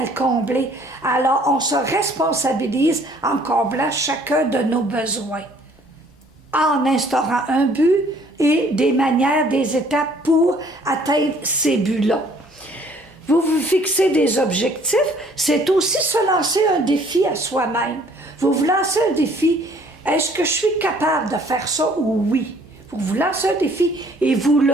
le combler. Alors, on se responsabilise en comblant chacun de nos besoins, en instaurant un but et des manières, des étapes pour atteindre ces buts-là. Vous vous fixez des objectifs, c'est aussi se lancer un défi à soi-même. Vous vous lancez un défi, est-ce que je suis capable de faire ça ou oui? Vous vous lancez un défi et vous le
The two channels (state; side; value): normal; both; correlation 0.58